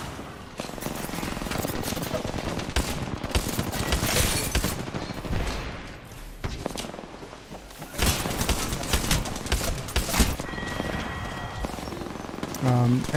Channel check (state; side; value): identical; both; correlation 1.00